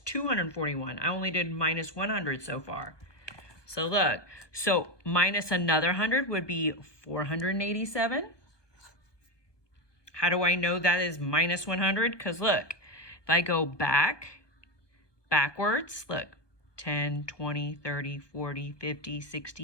I only did minus 100 so far. So look, so minus another 100 would be 487. How do I know that is minus 100? Because look, if I go backwards, look, 10, 20, 30, 40, 50,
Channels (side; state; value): right; late; 1.2 ms